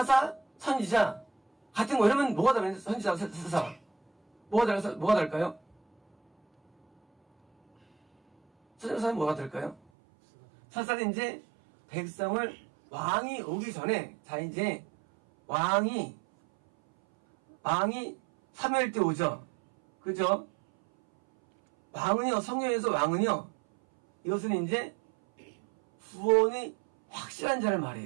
선지자 같은 거 이러면 뭐가 다른 선지자, 사사 뭐가 다를까요? 선지자는 뭐가 다를까요? 사사는 이제 백성을 왕이 오기 전에 자 이제 왕이 사무엘 때 오죠. 그죠? 왕은요, 성경에서 왕은요, 이것은 이제 구원이 확실한 자를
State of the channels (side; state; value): left; drops out; at 9.8 s